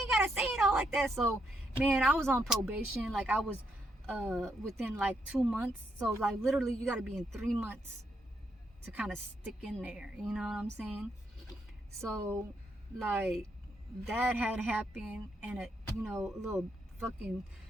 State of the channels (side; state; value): both; normal; correlation 0.78